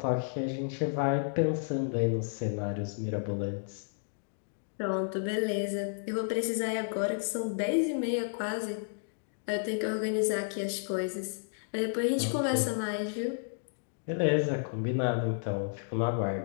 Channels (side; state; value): right; silent; digital silence